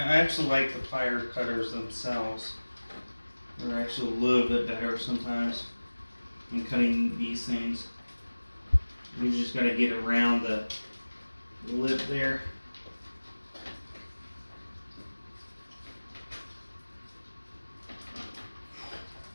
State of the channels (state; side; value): inverted; both; correlation -1.00